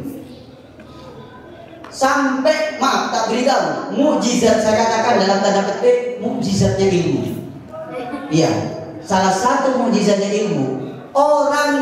Sampai, maaf tak beritahu, mukjizat, saya katakan dalam tanda petik, mukjizatnya ilmu. Iya, salah satu mukjizatnya ilmu. Orang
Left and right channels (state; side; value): identical; both; correlation 1.00